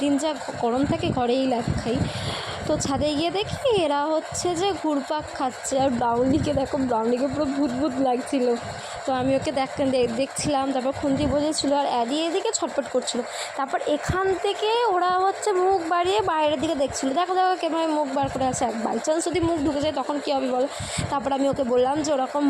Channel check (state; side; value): identical; both; correlation 1.00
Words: যা গরম থাকে ঘরেই লাগ খাই। তো ছাদে গিয়ে দেখি এরা হচ্ছে যে ঘুরপাক খাচ্ছে, আর ব্রাউনিকে দেখো, ব্রাউনিকে পুরো ভূত ভূত লাগছিল। তো আমি ওকে দেখছিলাম, তারপর খুন্তি বোঝেছিলো, আর অ্যাডি এদিকে ছটফট করছিল। তারপর এখান থেকে ওরা হচ্ছে মুখ বাড়িয়ে বাইরের দিকে দেখছিলো, দেখো দেখো কেমন মুখ বার করে আছে। বাই চান্স যদি মুখ ঢুকে যায় তখন কী হবে বলো। তারপর আমি ওকে বললাম যে ওরকম